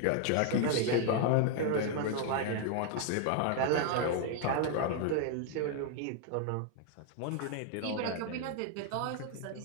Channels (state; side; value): different; both; correlation 0.00